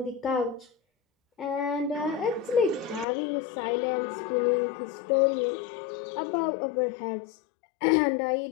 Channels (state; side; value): drops out; right; at 3.1 s